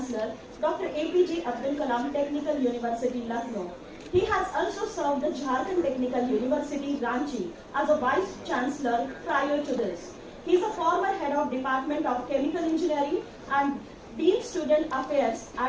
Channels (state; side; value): identical; both; correlation 1.00